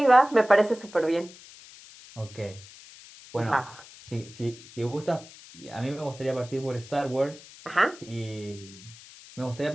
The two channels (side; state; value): left; noise; hiss, 19 dB below the sound